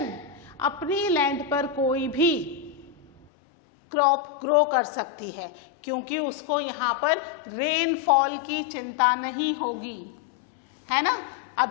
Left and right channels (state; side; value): drops out; right; at 3.2 s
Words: अपनी लैंड पर कोई भी क्रॉप ग्रो कर सकती है, क्योंकि उसको यहाँ पर रेनफॉल की चिंता नहीं होगी, है ना।